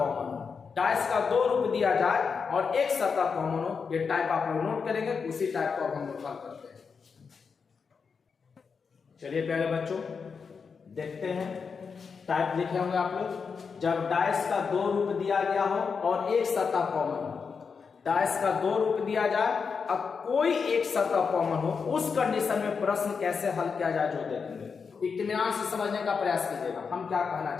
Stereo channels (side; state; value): right; quieter; 5.6 dB